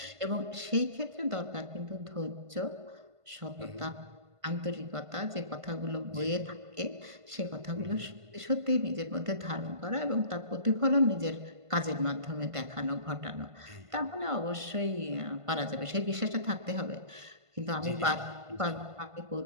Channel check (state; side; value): late; left; 1.5 ms